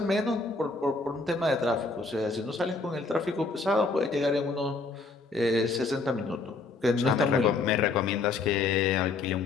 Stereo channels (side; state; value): right; quieter; 3.9 dB